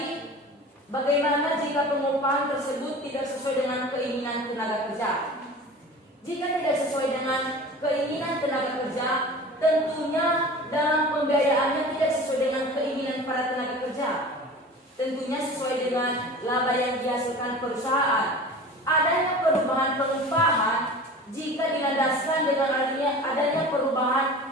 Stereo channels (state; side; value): normal; both; correlation 0.38